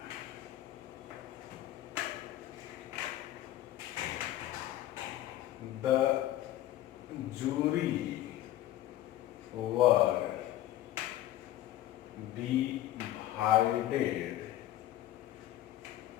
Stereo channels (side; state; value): right; quieter; 13.9 dB